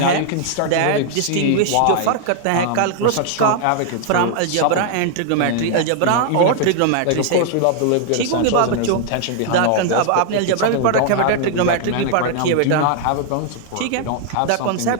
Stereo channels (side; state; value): both; different; correlation 0.00